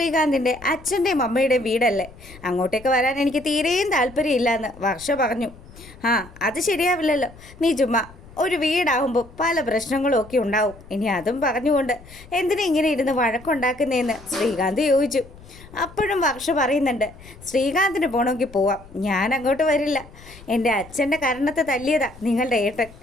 അച്ഛൻ്റെയും അമ്മയുടെയും വീടല്ലേ, അങ്ങോട്ടേക്ക് വരാൻ എനിക്ക് തീരെയും താല്പര്യമില്ലയെന്ന് വർഷ പറഞ്ഞു. ആ അത് ശരിയാവില്ലല്ലോ, നീ ചുമ്മാ, ഒരു വീടാവുമ്പോൾ പല പ്രശ്നങ്ങളും ഒക്കെ ഉണ്ടാവും, ഇനി അതും പറഞ്ഞുകൊണ്ട് എന്തിനാ ഇങ്ങനെ ഇരുന്ന് വഴക്കുണ്ടാക്കുന്നതെന്ന് ശ്രീകാന്ത് ചോദിച്ചു. അപ്പോഴും വർഷ പറയുന്നുണ്ട്, ശ്രീകാന്തിന് പോകണമെങ്കിൽ പോവാം, ഞാൻ അങ്ങോട്ട് വരില്ല. എൻ്റെ അച്ഛൻ്റെ കരണത്തെ തല്ലിയതാ നിങ്ങളുടെ ഏട്ടൻ,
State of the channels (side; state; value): left; noise; rumble, 20 dB below the sound